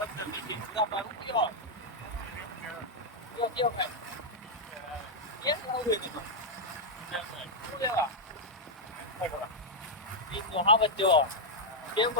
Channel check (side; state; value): both; normal; correlation -0.04